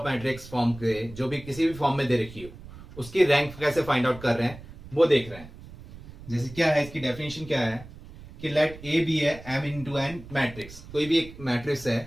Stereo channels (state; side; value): noise; right; rumble, 17 dB below the sound